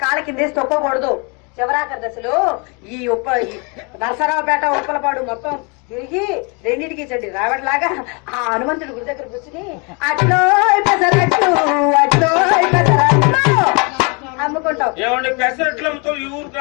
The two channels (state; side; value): quieter; right; 32.3 dB